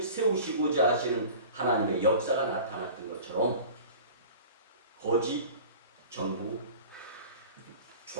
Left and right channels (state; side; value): inverted; both; correlation -0.40